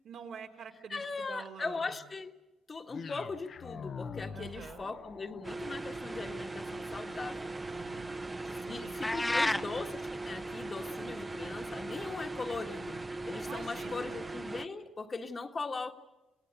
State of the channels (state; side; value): normal; both; correlation 0.92